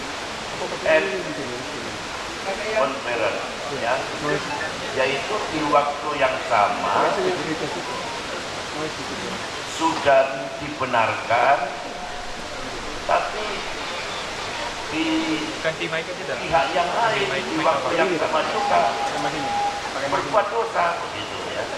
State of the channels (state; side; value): identical; both; correlation 1.00